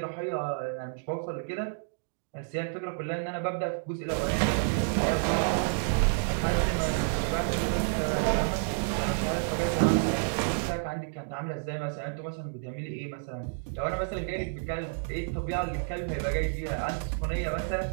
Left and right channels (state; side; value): silent; left; digital silence